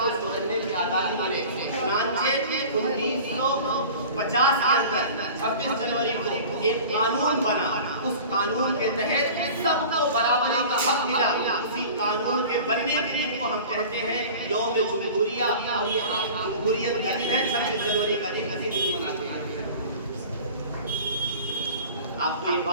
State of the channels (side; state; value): both; inverted; correlation -0.40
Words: اس کو رہنے کی آزادی ملے۔ چنانچہ 1950 کے اندر 26 جنوری کو ایک قانون بنا، اس قانون کے تحت سب کو برابری کا حق ملا۔ اسی قانون کے بننے کے دن کو ہم کہتے ہیں یوم جمہوریہ، اور یہ جمہوریت کا دن ہے، 26 جنوری کا دن مناتے ہیں۔ آپ کو یہ